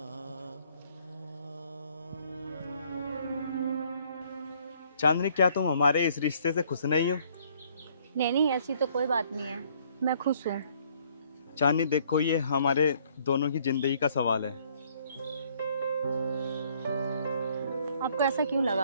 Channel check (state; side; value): inverted; both; correlation -0.63